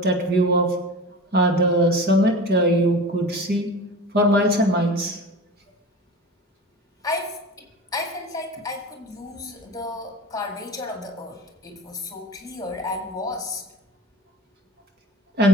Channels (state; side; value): normal; both; correlation 0.33